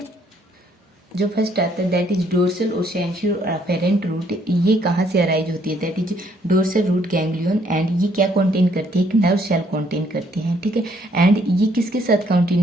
जो फर्स्ट आता है दैट इज डोर्सल और सेंसरी और अफेरेंट रूट, ये कहाँ से अराइज होती है, that is dorsal root ganglion, and ये क्या कंटेन करती है, एक नर्व सेल कंटेन करती है, ठीक है। एंड ये किसके साथ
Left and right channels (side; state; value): both; normal; correlation 0.67